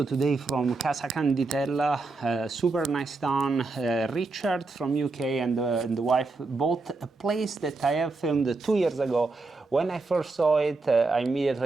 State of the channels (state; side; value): quieter; left; 3.6 dB